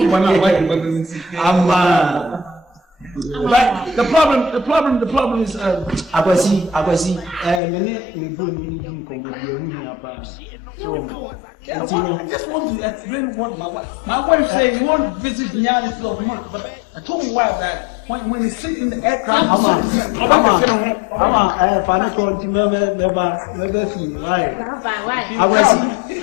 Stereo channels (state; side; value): drops out; right; at 7.6 s